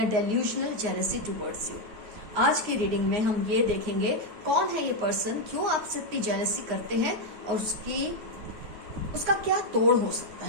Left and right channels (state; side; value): late; left; 9.2 ms